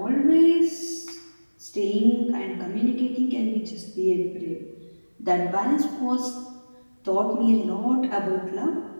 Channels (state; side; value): inverted; both; correlation -1.00